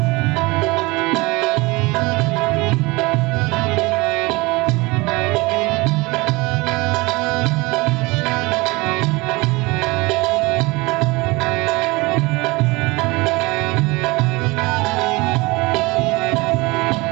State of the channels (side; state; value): left; quieter; 23.8 dB